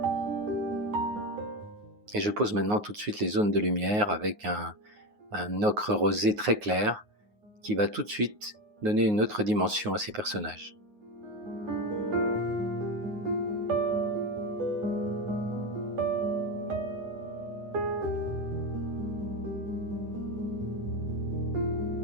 Et je pose maintenant tout de suite les zones de lumière avec un ocre rosé très clair, qui va tout de suite donner une autre dimension à ces personnages.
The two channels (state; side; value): late; left; 9.5 ms